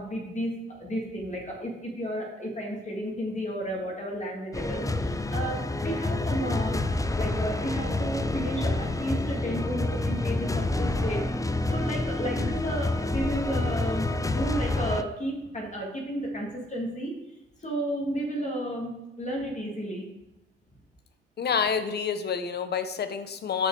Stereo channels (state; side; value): normal; both; correlation 0.66